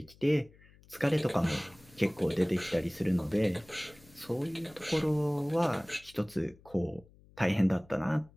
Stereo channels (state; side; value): noise; left; hum, 26 dB below the sound